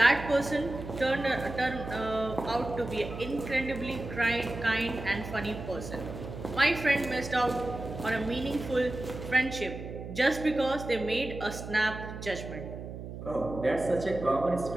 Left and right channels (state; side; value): noise; right; hum, 9 dB below the sound